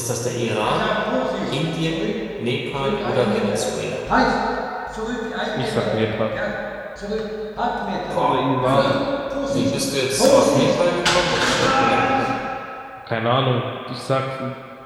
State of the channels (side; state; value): both; identical; correlation 1.00